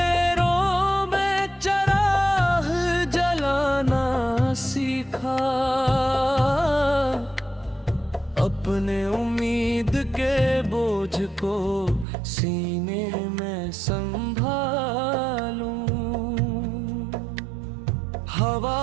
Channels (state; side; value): drops out; left; at 12.1 s